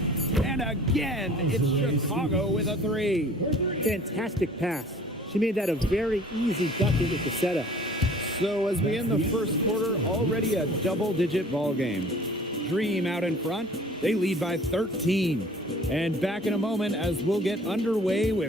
And again, it's Chicago with a 3. Fantastic pass. She made that a very easy bucket with the setup. So as we end the first quarter, already a double-digit ball game. Dream out in front. They lead by 13. And back in a moment as we'll get underway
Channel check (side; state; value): both; normal; correlation 0.49